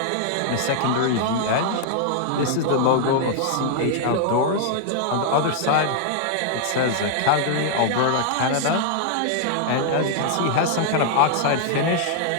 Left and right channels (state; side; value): different; both; correlation -0.01